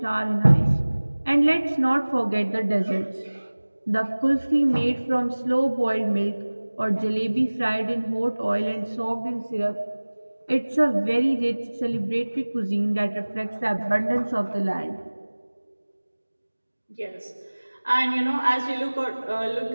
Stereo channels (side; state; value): both; inverted; correlation -1.00